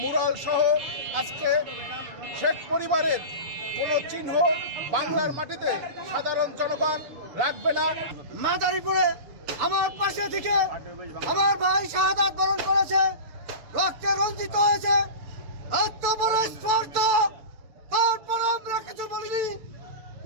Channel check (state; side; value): late; left; 6.8 ms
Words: মুরাল সহ আজকে শেখ পরিবারের কোনো চিহ্ন বাংলার মাটিতে সাধারণ জনগণ রাখবে না। মাদারীপুরে আমার পাশে থেকে আমার ভাই শাহাদাত বরণ করেছে, রক্তে রঞ্জিত হয়েছে, এত বড় স্পর্ধা, তারপর আমরা কিছু বলিনি।